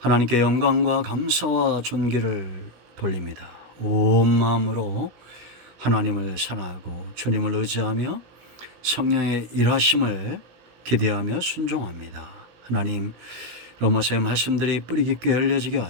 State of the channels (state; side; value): late; left; 16 ms